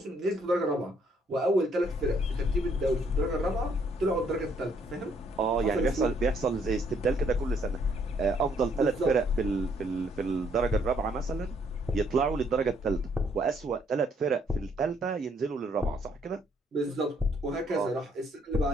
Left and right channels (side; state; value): both; normal; correlation 0.68